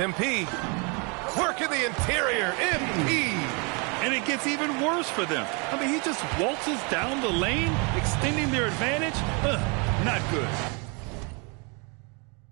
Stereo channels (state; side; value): quieter; left; 32.7 dB